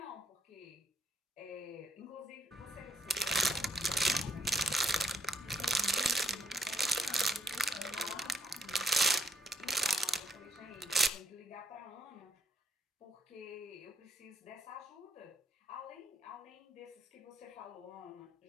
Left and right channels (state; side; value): normal; both; correlation 0.73